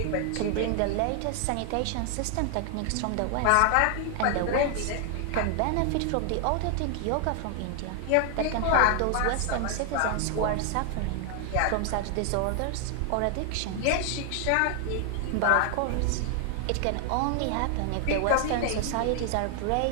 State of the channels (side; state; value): both; different; correlation 0.00